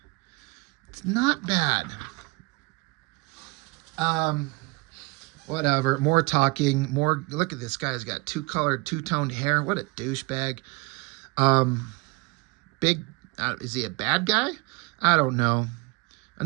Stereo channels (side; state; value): left; quieter; 25.2 dB